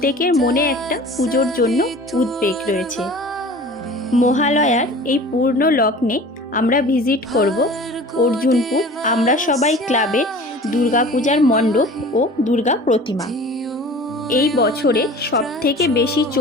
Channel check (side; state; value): both; normal; correlation 0.42